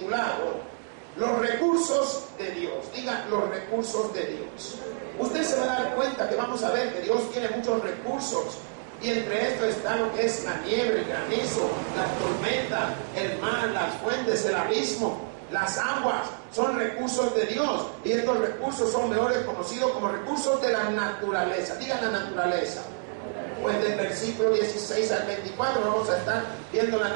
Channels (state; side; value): silent; left; 59 dB below the other